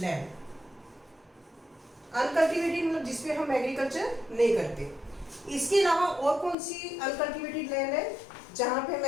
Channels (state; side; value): drops out; right; at 6.6 s